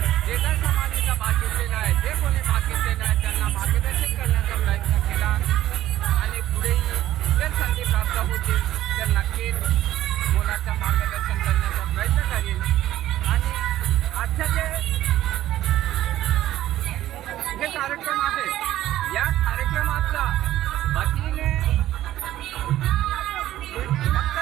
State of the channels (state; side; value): quieter; left; 13.7 dB